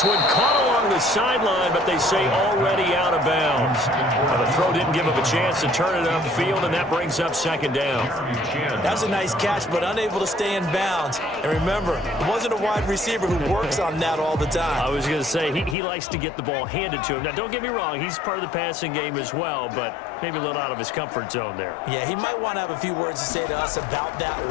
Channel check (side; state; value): right; drops out; at 15.8 s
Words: one caught along the sideline, but they say already out of bounds. Now, the throw didn't give him a chance to turn it upfield, and that brings up 2nd down. That was a nice catch, but unable to stay in bounds. And remember, it wasn't a wide receiver who works on that all the time. I was going to say, he likes to get the ball handed to him. Now, don't get me wrong, he's part of the passing game as well, but maybe a little out of his comfort zone there. Yeah, he might want to have a few words to say to us about